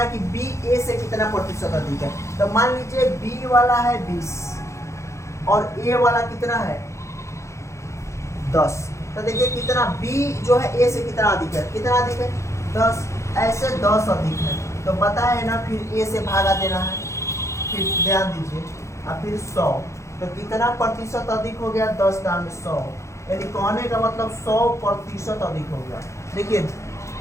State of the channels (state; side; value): late; right; 0.14 ms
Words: कि बी ए से कितना प्रतिशत अधिक है, तो मान लीजिए बी वाला है 20 और ए वाला कितना है 10, तो देखिए कितना बी जो है ए से कितना अधिक है, कितना अधिक है 10, ऐसे 10 अधिक है, तो पता है ना, फिर ए से भागा देना है, फिर ध्यान दीजिए, और फिर 100, तो कितना प्रतिशत अधिक हो गया, 10 दाम 100, यानी कहने का मतलब 100% अधिक हो गया। देखिए